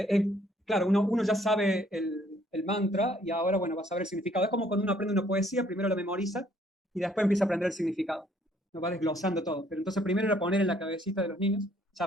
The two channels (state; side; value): normal; both; correlation 0.64